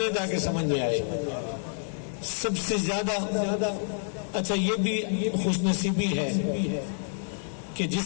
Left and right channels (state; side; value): silent; right; digital silence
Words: تاکہ سمجھ میں آئے۔ سب سے زیادہ، اچھا یہ بھی خوش نصیبی ہے کہ جس